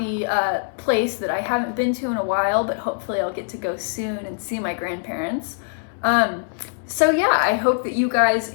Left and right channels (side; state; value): right; silent; digital silence